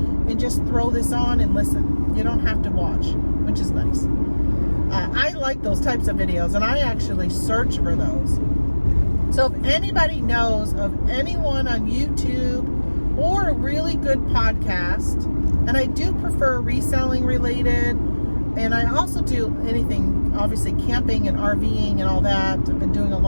and just throw this on and listen. You don't have to watch, which is nice. I like those types of videos, and I actually search for those. So if anybody knows of anyone on YouTube or a really good podcast, and I do prefer reselling related, and I also do anything, obviously camping and RVing and all that. I've been doing a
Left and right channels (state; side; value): inverted; both; correlation -1.00